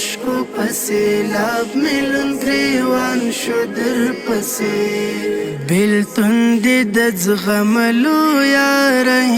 په سیلاب مې لوند ګریوان شو در پسې بېلتون دې د زغملو یاره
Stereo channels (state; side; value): identical; both; correlation 1.00